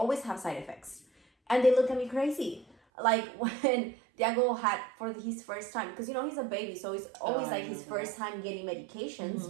have side effects. And they look at me crazy. Like when Diego had for his first time, because he's a baby, so it's always like his first time getting medications.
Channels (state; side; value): drops out; left; at 2.8 s